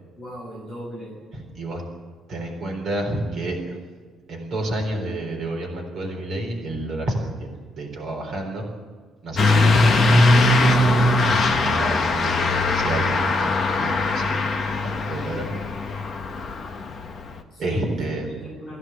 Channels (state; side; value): normal; both; correlation 0.79